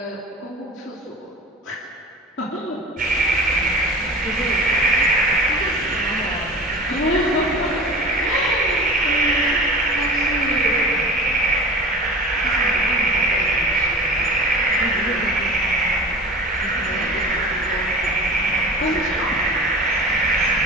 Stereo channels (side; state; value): both; normal; correlation 0.36